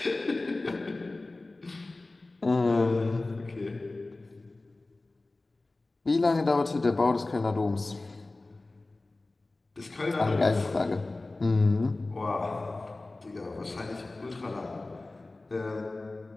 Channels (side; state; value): right; quieter; 3.1 dB